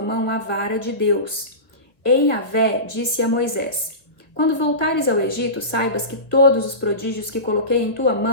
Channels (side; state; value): right; late; 1.3 ms